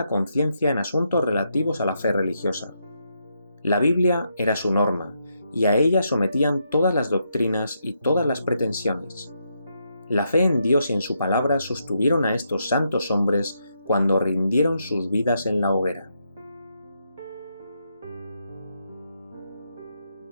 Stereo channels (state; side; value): inverted; both; correlation -0.80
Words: conciencia en asuntos relativos a la fe religiosa. La Biblia era su norma, y a ella sometían todas las doctrinas y todas las pretensiones. La fe en Dios y en su palabra sostuvieron a estos santos hombres cuando rindieron sus vidas en la hoguera.